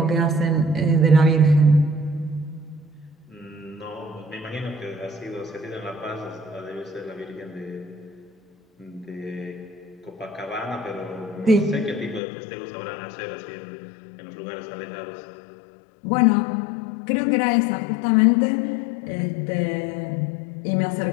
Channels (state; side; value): drops out; right; at 12.2 s